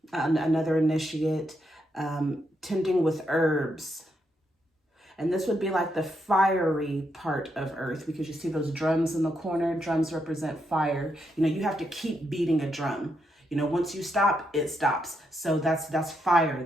initiate. Tending with herbs. And this would be like the fiery part of earth, because you see those drums in the corner. Drums represent fire. You know, you have to keep beating a drum. You know, once you stop, it stops. So that's fire.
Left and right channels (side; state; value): both; normal; correlation 0.80